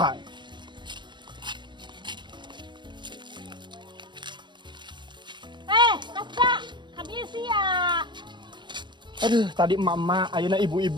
Kasta, habis ya. Aduh, tadi emak-emak, ayeuna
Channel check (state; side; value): late; left; 0.22 ms